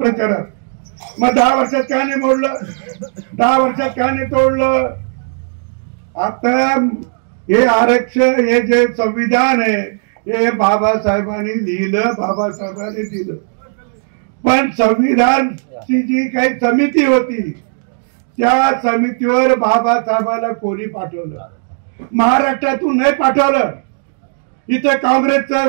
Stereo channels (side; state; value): left; silent; digital silence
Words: मग 10 वर्षात का नाही मोडलं, 10 वर्षात का नाही तोडलं. आता हे आरक्षण हे जे संविधान आहे हे बाबासाहेबांनी लिहिलं, बाबासाहेबांनी दिलं. पण संविधानची जी काही समिती होती त्या समितीवर बाबासाहेबाला कोणी पाठवलं? महाराष्ट्रातून नाही पाठवलं. इथे काँग्रेसचे